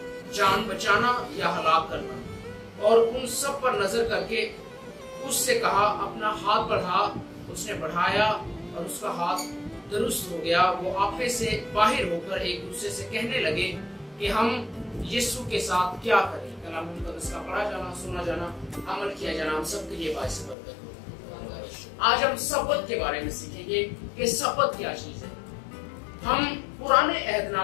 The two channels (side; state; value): right; drops out; at 20.6 s